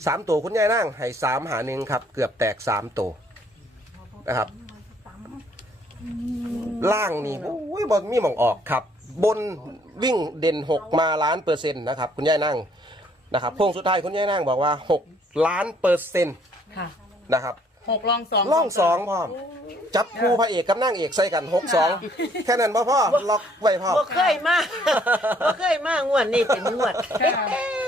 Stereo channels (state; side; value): normal; both; correlation 0.64